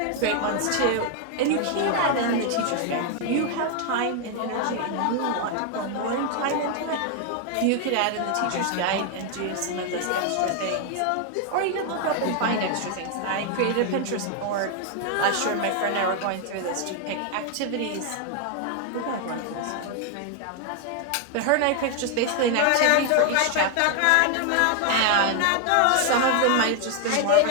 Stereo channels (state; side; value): different; both; correlation 0.01